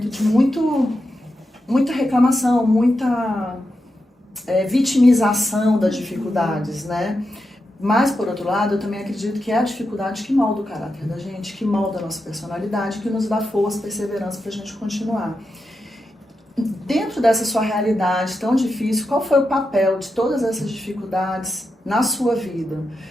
de muita reclamação, muita vitimização das dificuldades, né? Mas, por outro lado, eu também acredito que é a dificuldade que molda o caráter da gente, que molda a nossa personalidade, que nos dá força, perseverança para a gente continuar. Dentro dessa sua realidade tão difícil, qual foi o papel de todas essas dificuldades na sua vida?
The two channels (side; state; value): both; normal; correlation 0.87